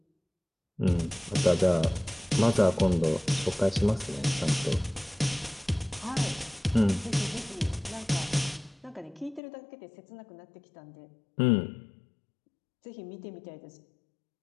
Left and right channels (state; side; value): drops out; right; at 9.4 s